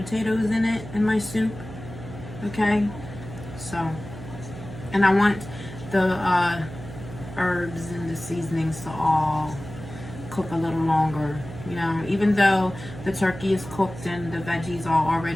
in it in my soup. Okay. So, and I want the herbs and the seasonings to all cook a little longer. You know, even though the turkey is cooked and the veggies are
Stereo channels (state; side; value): noise; right; hum, 13 dB below the sound